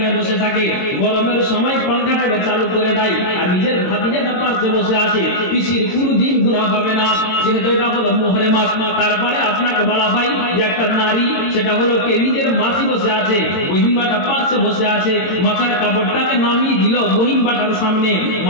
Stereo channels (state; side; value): late; right; 22 ms